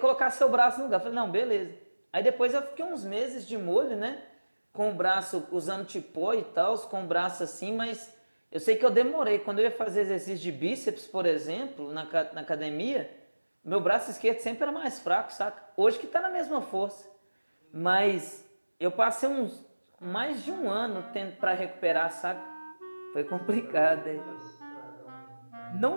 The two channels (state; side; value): inverted; both; correlation -1.00